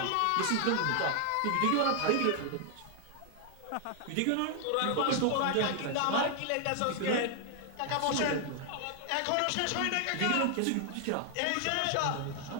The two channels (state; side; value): different; both; correlation 0.00